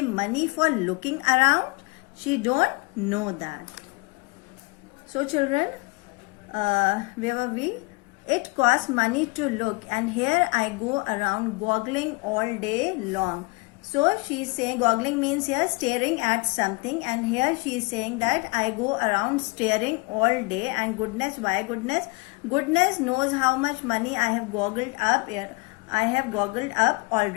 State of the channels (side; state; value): right; quieter; 27.0 dB